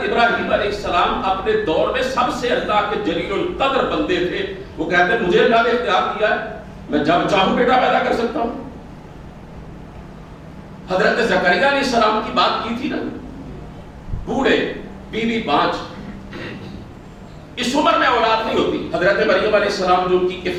ابراہیم علیہ السلام اپنے دور میں سب سے اللہ کے جلیل القدر بندے تھے، وہ کہتے ہیں مجھے اللہ نے اختیار دیا ہے، میں جب چاہوں بیٹا پیدا کر سکتا ہوں۔ حضرت زکریا علیہ السلام کی بات کی تھی نا، بوڑھے، بیوی بانجھ، اس عمر میں اولاد نہیں ہوتی۔ حضرت مریم علیہ السلام جو ان کی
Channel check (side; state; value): both; identical; correlation 1.00